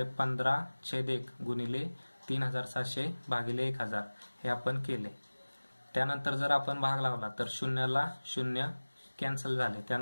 15/1 गुणिले 3700 भागिले 1000 हे आपण केले। त्यानंतर जर आपण भाग लावला तर 0ला 0 कॅन्सल झाले,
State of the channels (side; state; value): both; inverted; correlation -1.00